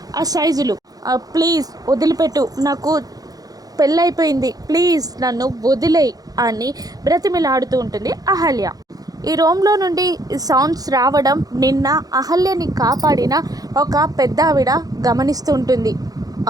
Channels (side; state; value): left; late; 0.18 ms